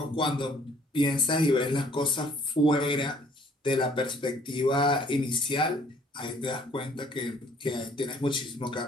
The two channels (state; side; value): normal; both; correlation 0.59